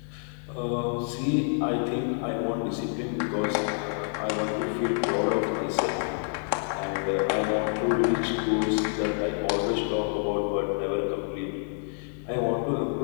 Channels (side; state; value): right; silent; 60 dB below the other